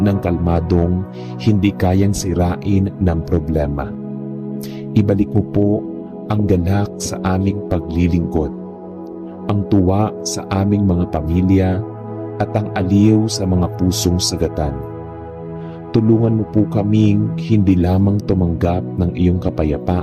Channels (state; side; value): identical; both; correlation 1.00